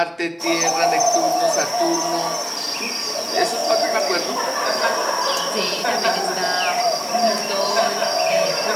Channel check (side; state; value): both; identical; correlation 1.00